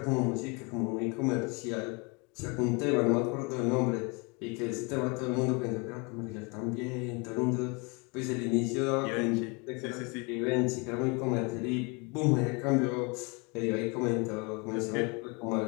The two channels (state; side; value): quieter; right; 30.5 dB